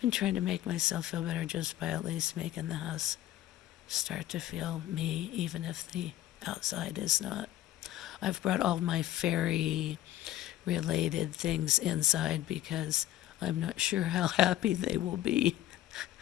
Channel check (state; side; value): quieter; right; 13.8 dB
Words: trying to make myself feel better just by at least making the house start to feel me, even if the outside is not. I've brought all my fairy related things inside because I'm not sure how happy they will be